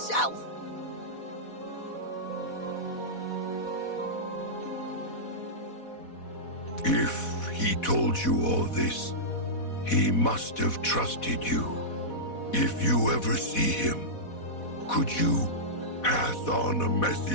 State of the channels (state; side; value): late; right; 4.1 ms